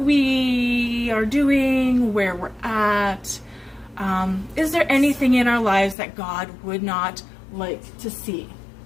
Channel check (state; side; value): drops out; right; at 6.0 s